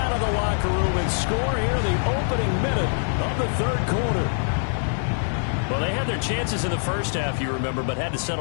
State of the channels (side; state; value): right; silent; digital silence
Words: of the locker room and score here in the opening minute of the third quarter. Well, they had their chances in the first half, you remember, but had to